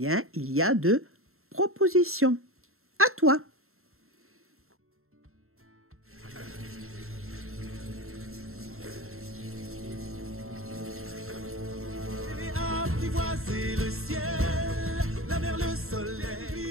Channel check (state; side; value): late; left; 0.62 ms